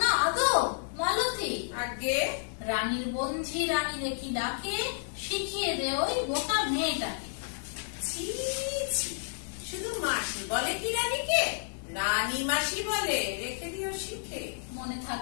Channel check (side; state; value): right; silent; 57 dB below the other